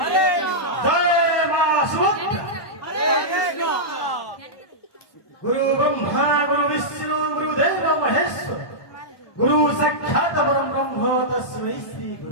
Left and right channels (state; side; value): late; right; 1.2 ms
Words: হরে জয় মা সুভদ্রা হরে কৃষ্ণ गुरु ब्रह्मा गुरु विष्णु गुरुदेव महेश्वर गुरु साक्षात् परम ब्रह्म तस्मै श्री